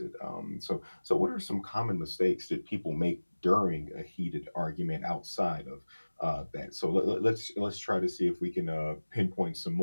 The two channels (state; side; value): inverted; both; correlation -1.00